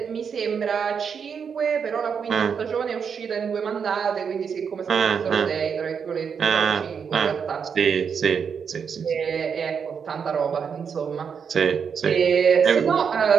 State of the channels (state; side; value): quieter; left; 6.7 dB